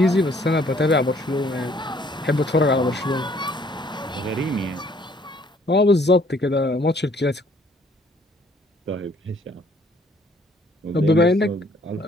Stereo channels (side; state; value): both; normal; correlation 0.62